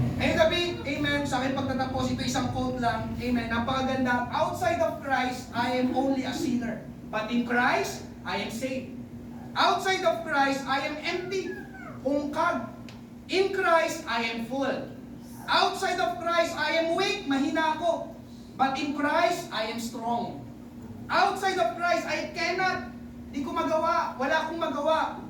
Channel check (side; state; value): both; identical; correlation 1.00